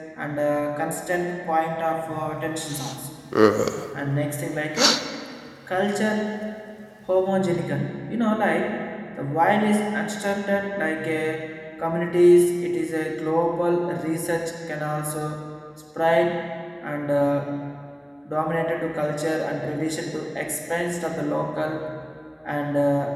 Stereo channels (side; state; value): both; identical; correlation 1.00